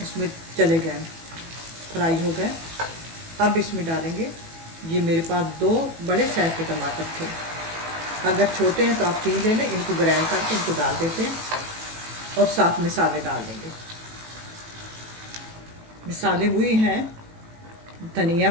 इसमें चले गए, फ्राई हो गए। अब इसमें डालेंगे, ये मेरे पास 2 बड़े साइज़ के टमाटर थे, अगर छोटे हैं तो आप 3 ले लें। इनको ग्राइंड करके इनको डाल देते हैं और साथ मसाले डाल देंगे। मसाले वही हैं, धनिया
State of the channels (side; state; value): left; late; 18 ms